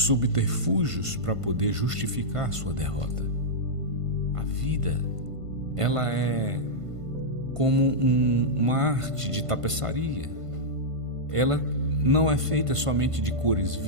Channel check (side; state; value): left; late; 1.5 ms